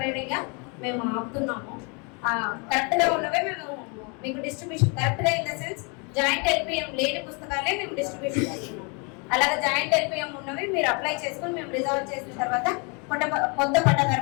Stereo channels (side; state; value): right; quieter; 33.4 dB